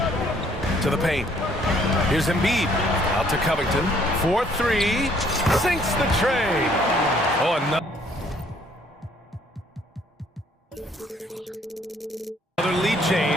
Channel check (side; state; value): both; normal; correlation 0.63